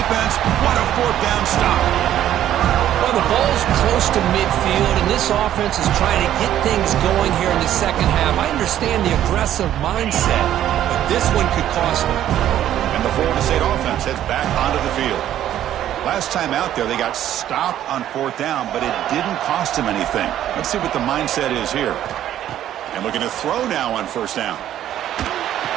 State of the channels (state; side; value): quieter; left; 11.7 dB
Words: What a fourth down stop. Well, the ball's close to midfield, and this offense is trying to get things going here in the second half. I understand the aggressive mindset, but this one could cost them. And the Florida State offense heads back onto the field. Last time out there, they got stopped on fourth down, but it didn't cost them anything. Let's see what the mindset is here. And looking to throw now on first down.